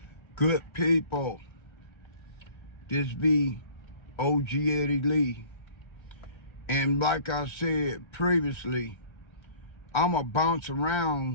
good people? This be OG Eddie Lee. And like I said previously, I'ma bounce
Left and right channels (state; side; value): late; right; 1.3 ms